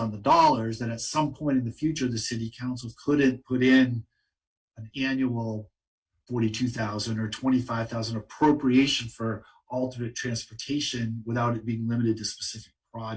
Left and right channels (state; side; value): identical; both; correlation 1.00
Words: the dollars that at some point in the future the city council couldn't put in an annual 42,000 or 25,000 appropriation for alternate transportation without it being limited to specific